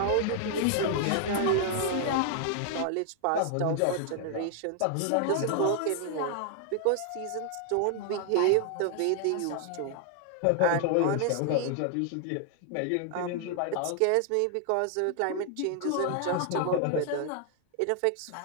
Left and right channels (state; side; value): different; both; correlation 0.00